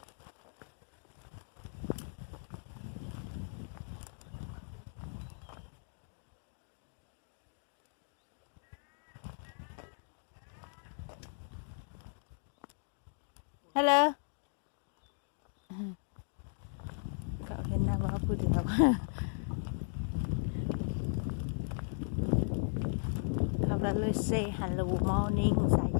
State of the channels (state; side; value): silent; right; digital silence